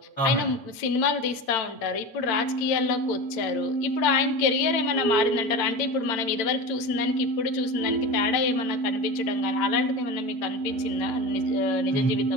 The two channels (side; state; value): right; late; 8.9 ms